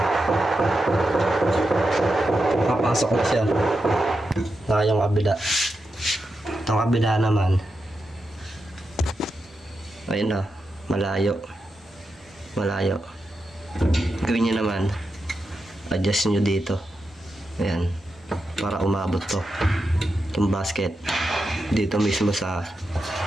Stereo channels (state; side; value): normal; both; correlation 0.88